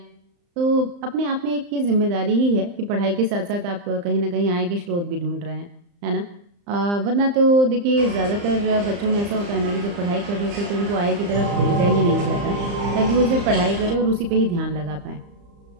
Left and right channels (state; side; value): late; left; 35 ms